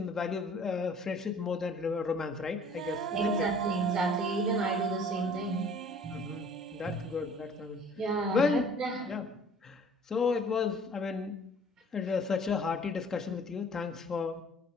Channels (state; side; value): normal; both; correlation 0.52